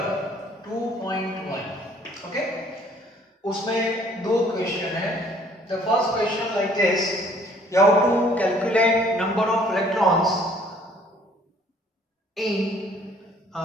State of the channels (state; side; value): normal; both; correlation 0.59